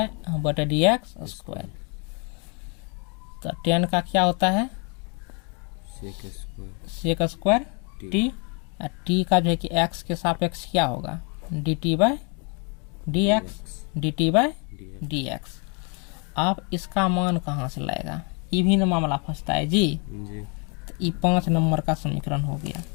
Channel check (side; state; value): right; quieter; 35.2 dB